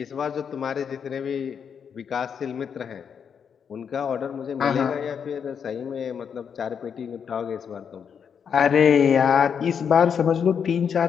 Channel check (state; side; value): quieter; right; 7.2 dB